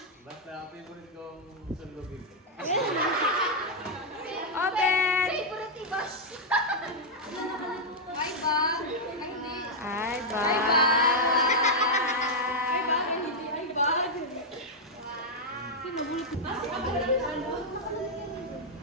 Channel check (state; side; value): normal; both; correlation -0.03